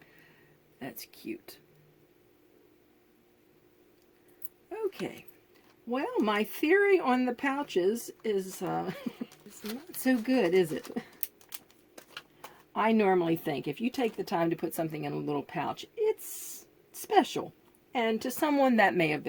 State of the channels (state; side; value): identical; both; correlation 1.00